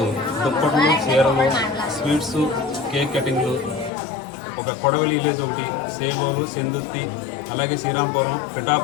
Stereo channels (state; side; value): drops out; right; at 3.9 s